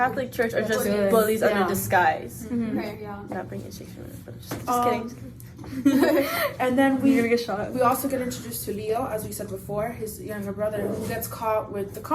Church are That's just what it is. bullies Yeah. under disguise. Okay, yeah. Not bringing Shakespeare, but just Um, kidding. And then You're we gonna get shot. we also get introduced to Leo, as we said before, his younger brother, who gets caught with the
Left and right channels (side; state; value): both; identical; correlation 1.00